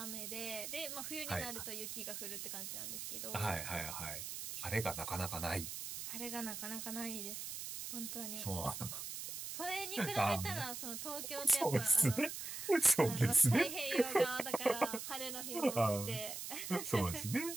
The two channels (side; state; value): right; noise; hiss, 6 dB below the sound